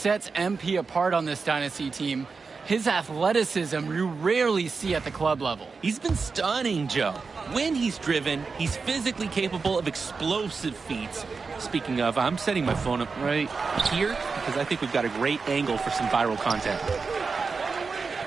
MP apart on this Dynasty team. His athleticism you rarely see at the club level. He's been stunning, Joe. When he's driven, he's physically capable of explosive feats. Speaking of, I'm setting my phone up right here because I think we've got a great angle for some viral content.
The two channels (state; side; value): quieter; left; 4.7 dB